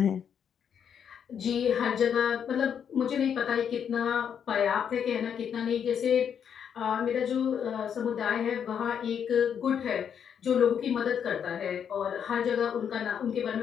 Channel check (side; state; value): right; quieter; 8.0 dB